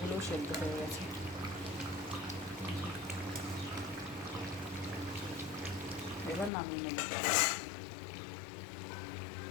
সেদ্ধ হয়ে গেছে। এবার নামিয়ে নেব।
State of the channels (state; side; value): drops out; right; at 6.5 s